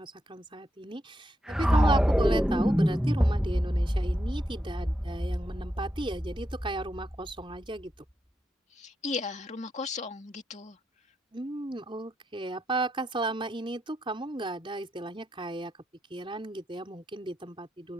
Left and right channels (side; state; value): both; normal; correlation 0.84